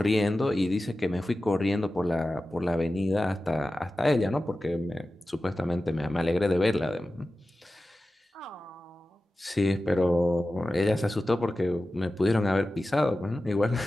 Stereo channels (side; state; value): both; normal; correlation 0.95